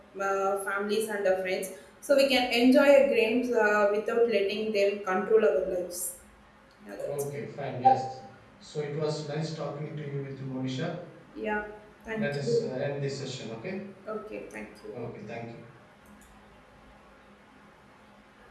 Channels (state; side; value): identical; both; correlation 1.00